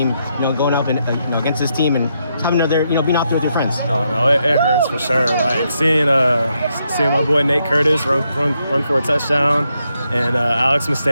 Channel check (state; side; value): inverted; both; correlation -0.80